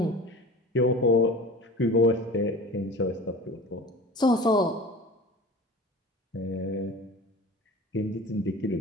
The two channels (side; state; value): both; normal; correlation 0.38